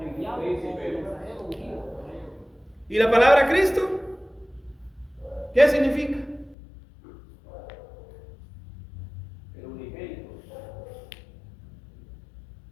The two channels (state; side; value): drops out; right; at 6.6 s